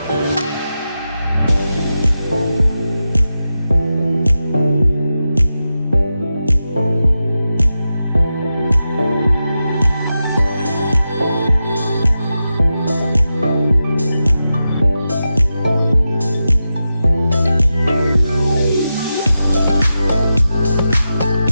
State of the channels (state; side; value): inverted; both; correlation -0.91